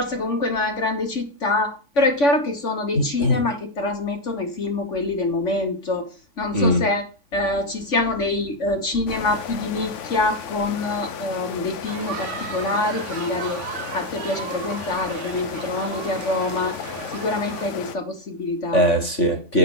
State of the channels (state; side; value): late; right; 3.5 ms